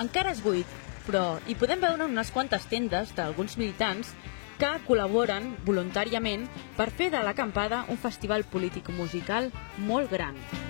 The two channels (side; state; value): right; silent; 57 dB below the other